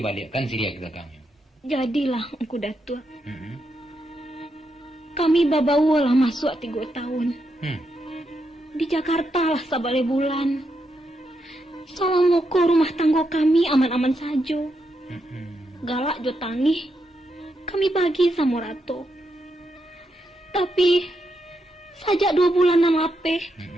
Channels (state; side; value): normal; both; correlation 0.82